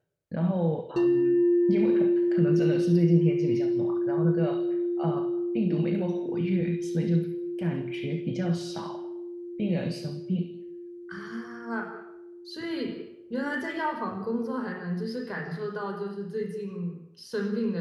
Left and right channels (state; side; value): identical; both; correlation 1.00